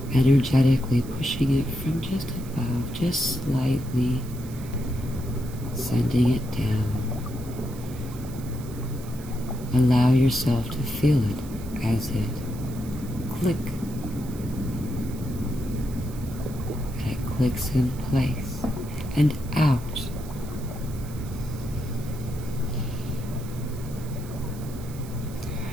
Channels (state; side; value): noise; right; hiss, 19 dB below the sound